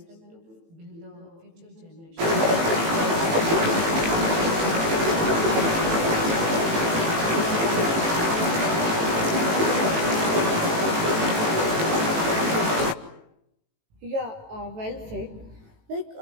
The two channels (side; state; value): left; late; 18 ms